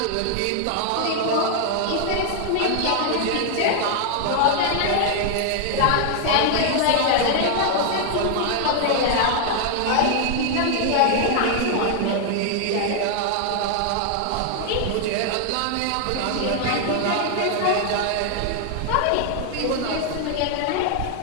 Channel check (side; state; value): both; different; correlation 0.00